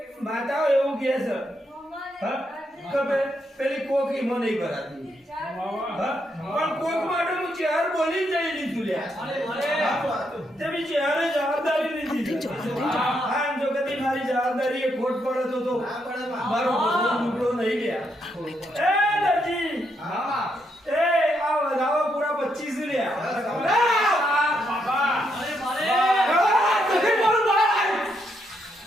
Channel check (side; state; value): both; normal; correlation 0.78